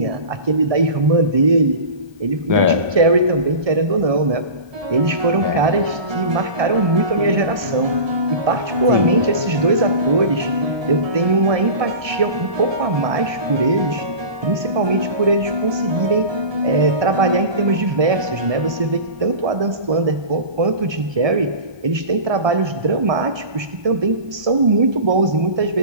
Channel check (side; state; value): left; late; 1.2 ms